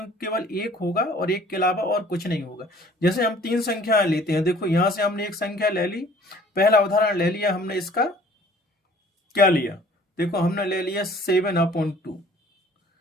केवल 1 होगा और 1 के अलावा और कुछ नहीं होगा। जैसे हम 3 संख्याएं लेते हैं, देखो यहां से हमने एक संख्या ले ली, पहला उदाहरण ले लिया हमने, इसका क्या लिया, देखो हमने ले लिया 7/2।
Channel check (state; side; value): normal; both; correlation 0.53